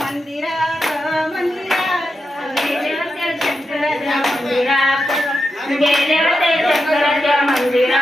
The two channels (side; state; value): both; normal; correlation 0.88